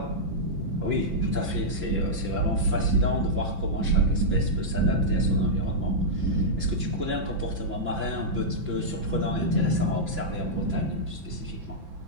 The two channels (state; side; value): late; left; 5.9 ms